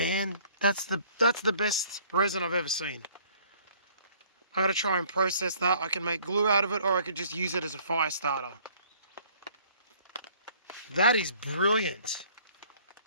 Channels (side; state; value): both; inverted; correlation -0.57